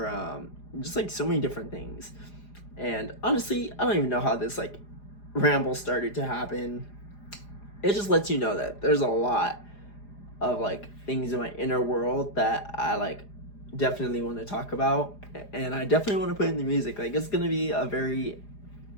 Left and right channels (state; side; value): late; right; 4.9 ms